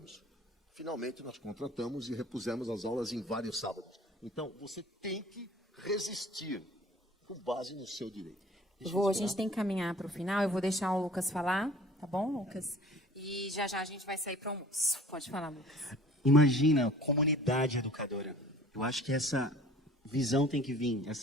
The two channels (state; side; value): normal; both; correlation 0.47